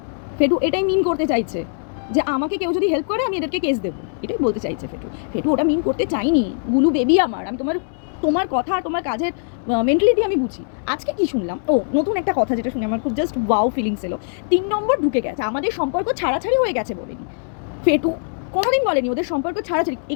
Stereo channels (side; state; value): right; silent; digital silence